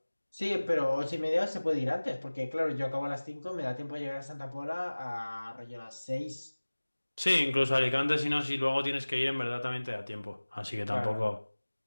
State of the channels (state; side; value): inverted; both; correlation -1.00